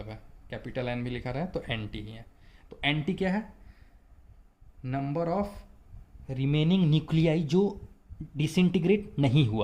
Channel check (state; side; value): identical; both; correlation 1.00